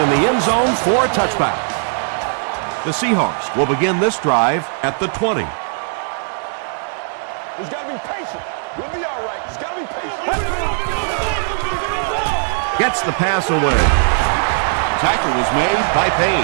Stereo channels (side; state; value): left; silent; digital silence